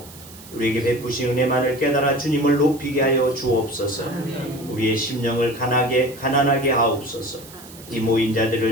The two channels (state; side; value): noise; right; hiss, 19 dB below the sound